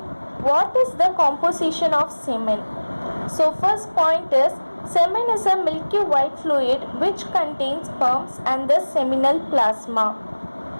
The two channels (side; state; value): both; inverted; correlation -1.00